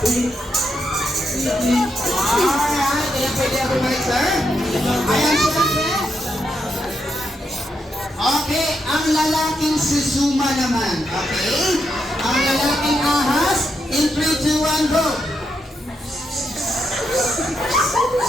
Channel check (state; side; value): normal; both; correlation 0.82